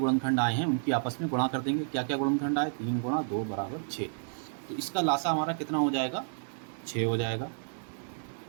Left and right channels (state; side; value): silent; left; digital silence